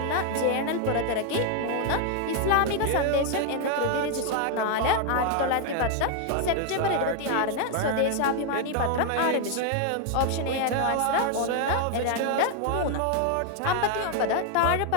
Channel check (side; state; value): both; different; correlation 0.00